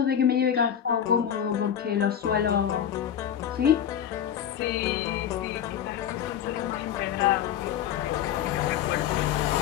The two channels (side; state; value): right; quieter; 9.4 dB